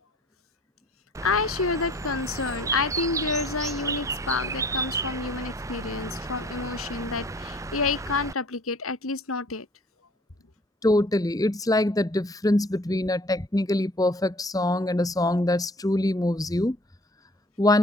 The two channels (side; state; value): both; normal; correlation 0.51